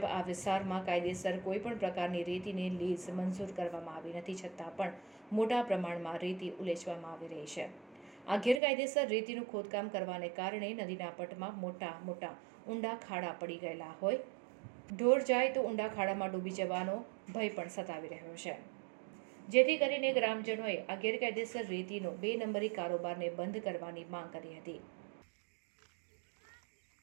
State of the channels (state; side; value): drops out; left; at 8.6 s